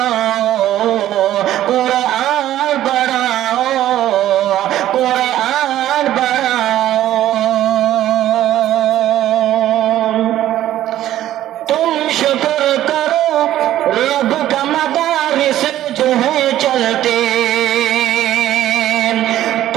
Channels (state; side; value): quieter; left; 13.1 dB